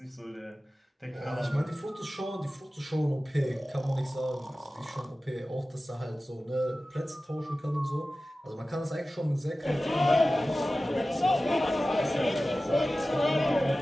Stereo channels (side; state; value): both; normal; correlation 0.96